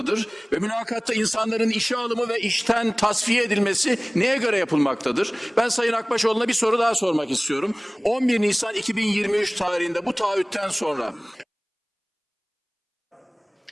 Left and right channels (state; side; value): identical; both; correlation 1.00